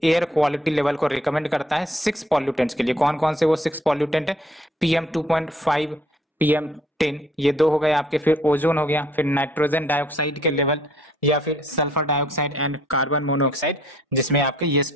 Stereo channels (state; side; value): normal; both; correlation 0.62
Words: एयर क्वालिटी लेवल को रिकमेंड करता है 6 पॉल्यूटेंट्स के लिए। कौन कौन से वो 6 पॉल्यूटेंट है? PM2.5, PM10, ये 2 हो गए आपके। फिर ओजोन हो गया, फिर नाइट्रोजन डाइऑक्साइड के लेवल, या फिर sulphur dioxide and carbon monoxide, जिसमें आपके ये